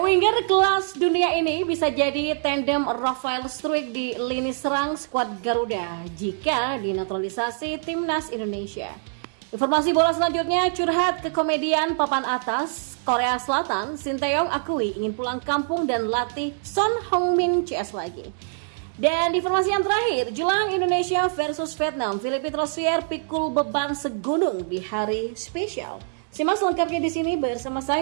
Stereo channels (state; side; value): silent; left; digital silence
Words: Winger kelas dunia ini bisa jadi tandem Rafael Struijk di lini serang skuad Garuda jika dinaturalisasi timnas Indonesia. Informasi bola selanjutnya, curhat kekomedian papan atas Korea Selatan, Sinteyong akui ingin pulang kampung dan latih Son Heung-min CS lagi. Dan informasi yang terakhir, jelang Indonesia versus Vietnam, Philippe Rosier pikul beban segunung di hari spesial. Simak selengkapnya di sini bersama